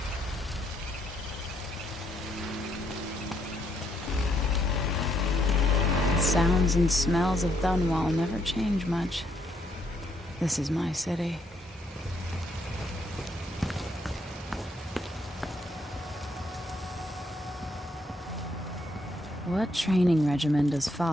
The sounds and smells of Dunwall never change much. This is my city. What training regimen does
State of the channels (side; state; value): both; normal; correlation 0.74